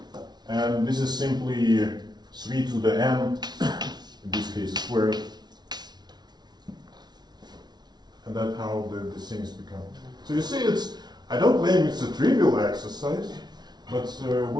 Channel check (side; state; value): left; late; 0.20 ms